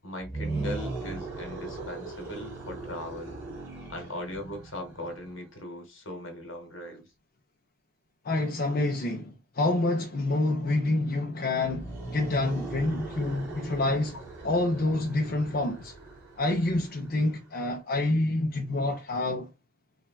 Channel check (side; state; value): both; normal; correlation 0.59